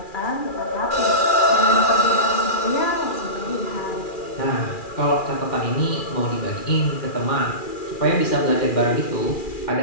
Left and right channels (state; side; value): late; right; 2.4 ms